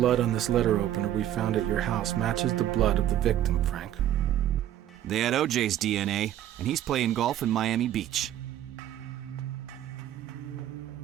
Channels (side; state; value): left; quieter; 11.9 dB